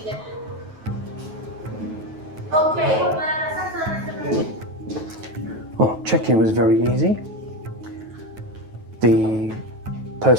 Oh, check-in was very easy. The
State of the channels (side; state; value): left; late; 9.3 ms